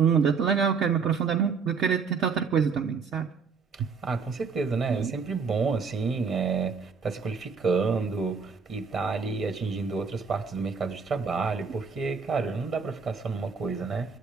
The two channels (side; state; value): left; quieter; 5.4 dB